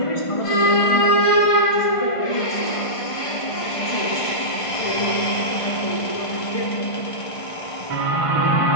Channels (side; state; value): right; late; 1.5 ms